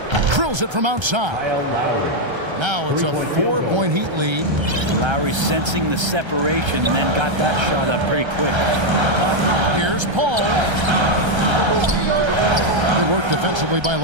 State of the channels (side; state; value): left; late; 1.3 ms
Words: drills it from outside. Now it's a 4-point Heat lead. Lowry sensing the separation and then got that shot up pretty quick. Here's Paul. Good work defensively by